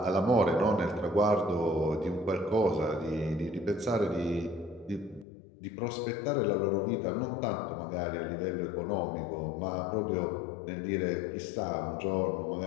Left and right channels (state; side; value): drops out; right; at 5.2 s